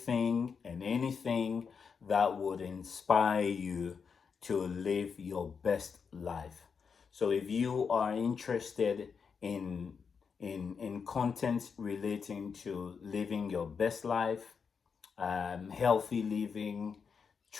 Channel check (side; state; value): right; quieter; 6.0 dB